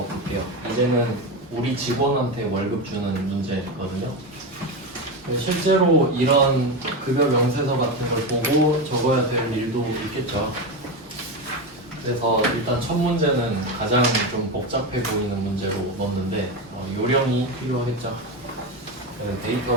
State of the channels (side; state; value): both; normal; correlation 0.16